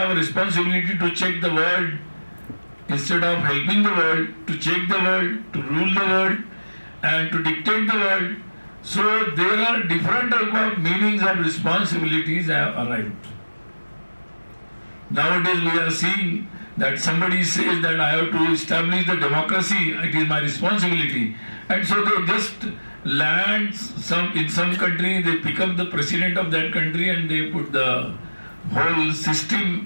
a responsibility to check the world instead of helping the world, to check the world, to rule the world, and to dictate the world. So there are different type of meanings of responsibilities have arrived. Nowadays we are seeing that somebody says that I have to establish the democracy, it is my responsibility. And so they just land in some country, they pick up the president of that country and they put the whole system,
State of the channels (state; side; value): inverted; both; correlation -1.00